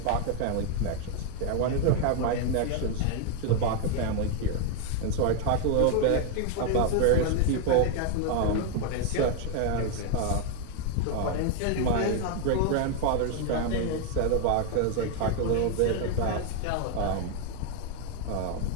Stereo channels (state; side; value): different; both; correlation 0.01